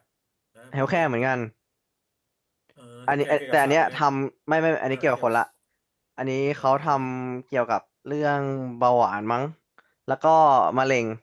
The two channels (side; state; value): both; identical; correlation 1.00